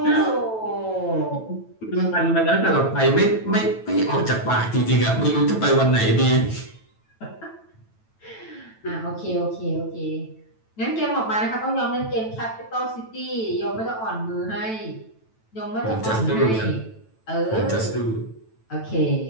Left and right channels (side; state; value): right; late; 9.1 ms